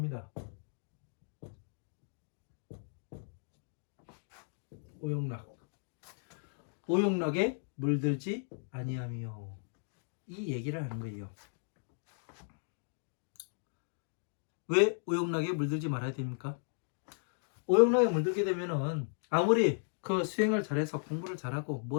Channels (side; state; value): right; silent; digital silence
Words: 오용락. 오용락에 물들지 아니하며 이 얘기를 하는 거예요. 왜 오용락에 물들지 말아야 됩니까? 오용락에 물들게 되면은 아무리 그 수행을 잘해서 공부를 잘하고